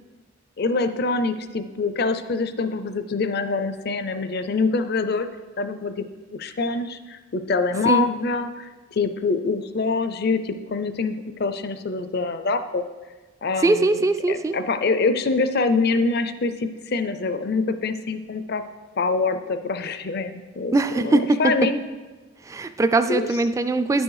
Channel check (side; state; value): both; normal; correlation 0.32